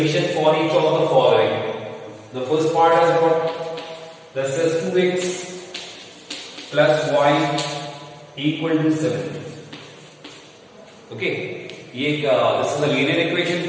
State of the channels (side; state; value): both; identical; correlation 1.00